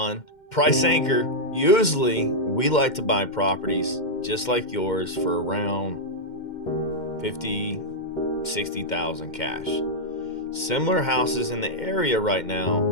Price anchor. Usually, we like to buy properties just like yours for around 50, 60,000 cash. Similar houses in the area right now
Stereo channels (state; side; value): late; right; 2.1 ms